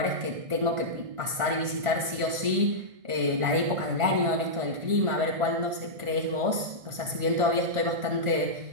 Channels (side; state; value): left; late; 1.4 ms